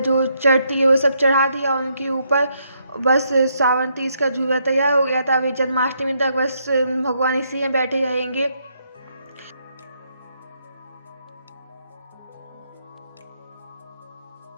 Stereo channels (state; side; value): inverted; both; correlation -0.75